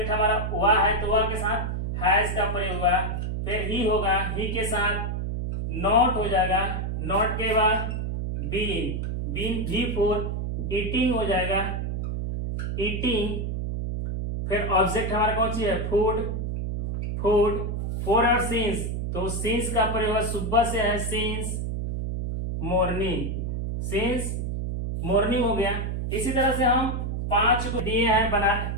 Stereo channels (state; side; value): noise; right; hum, 2 dB below the sound